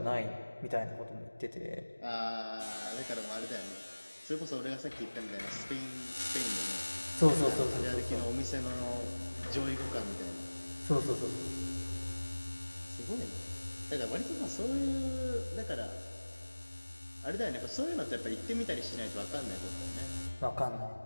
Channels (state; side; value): inverted; both; correlation -1.00